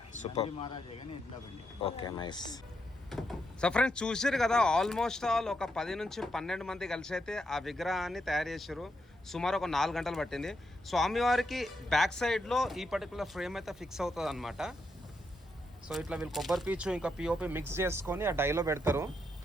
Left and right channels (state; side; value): normal; both; correlation 0.81